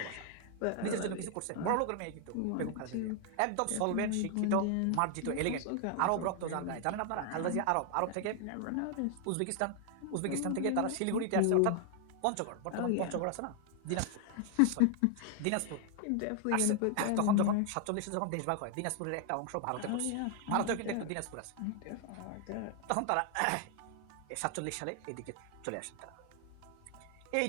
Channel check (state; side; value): different; both; correlation 0.00